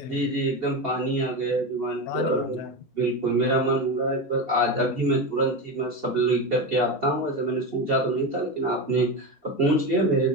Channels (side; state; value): both; normal; correlation 0.19